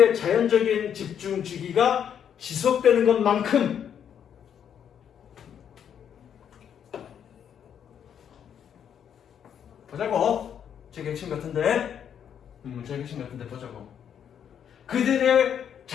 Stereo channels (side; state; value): right; quieter; 8.6 dB